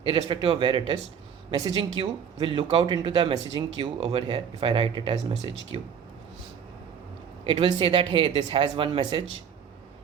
irrespective of where it is, messaging queue will look out into the messaging queue over here. If I write it as message queue, it will say that, hey, this has one message,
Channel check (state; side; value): quieter; left; 7.6 dB